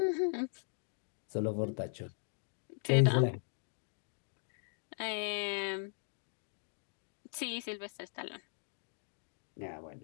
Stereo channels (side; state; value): right; silent; digital silence